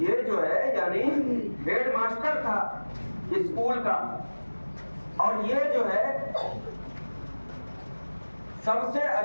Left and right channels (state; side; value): inverted; both; correlation -1.00